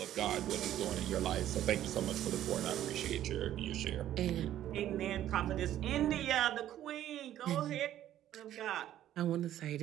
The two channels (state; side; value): quieter; left; 12.2 dB